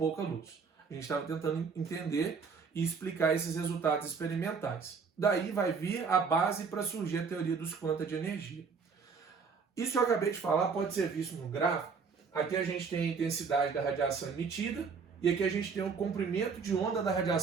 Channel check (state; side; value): quieter; left; 5.4 dB